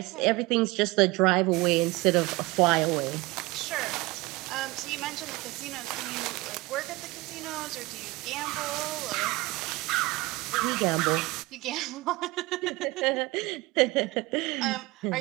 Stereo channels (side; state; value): left; quieter; 22.0 dB